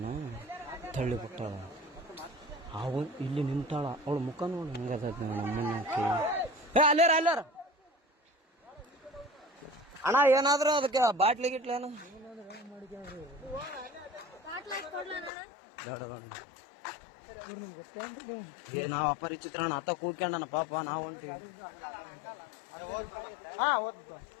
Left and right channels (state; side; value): drops out; right; at 15.3 s